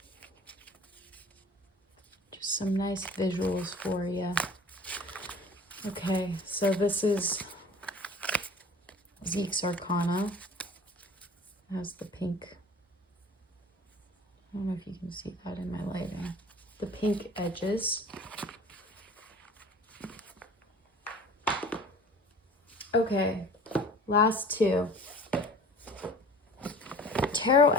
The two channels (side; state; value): both; normal; correlation 0.44